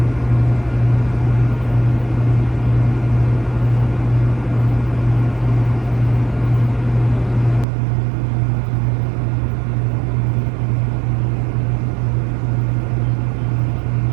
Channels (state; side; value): drops out; left; at 7.7 s